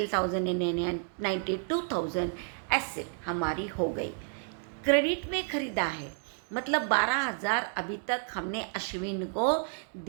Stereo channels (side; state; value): left; silent; 55 dB below the other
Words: यानी 92,000 एसेट हमारी हो गई। क्रेडिट में खरीदा है, मतलब 12,000 अभी तक हमने अश्विन को